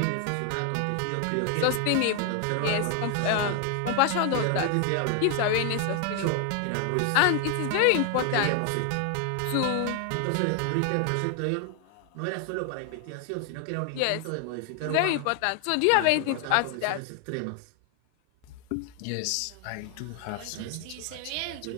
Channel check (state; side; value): different; both; correlation 0.00